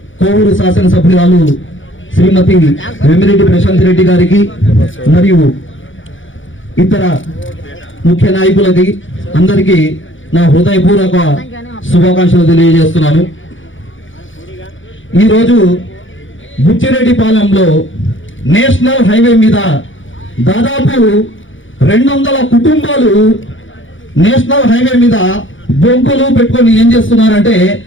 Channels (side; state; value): right; late; 0.56 ms